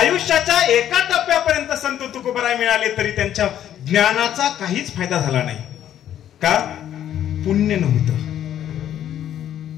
एका टप्प्यापर्यंत संत तुकोबराय मिळाले तरी त्यांच्या ज्ञानाचा काहीच फायदा झाला नाही. का? पुण्य नव्हतं.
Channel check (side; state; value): right; quieter; 10.9 dB